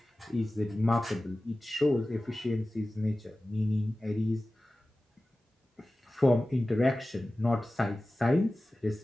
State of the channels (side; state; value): both; normal; correlation 0.96